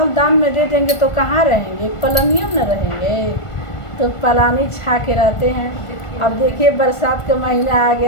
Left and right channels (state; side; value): late; right; 1.5 ms